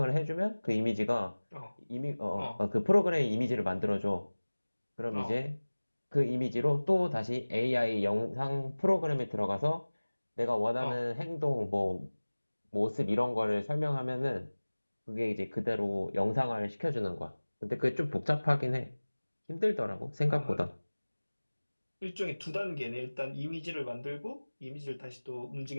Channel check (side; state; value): both; inverted; correlation -1.00